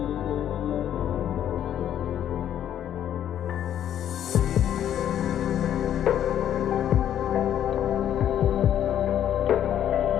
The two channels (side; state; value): right; quieter; 10.5 dB